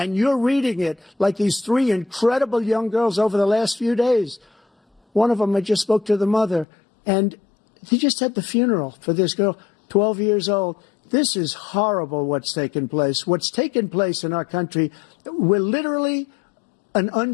you're reading it like these 3 incredible young girls over the last few days. One of them, I just spoke to the mother, and he just had the funeral for this girl, 12 years old. This is horrible what's taken place. What's taken place in our country, we're literally an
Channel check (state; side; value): drops out; right; at 6.7 s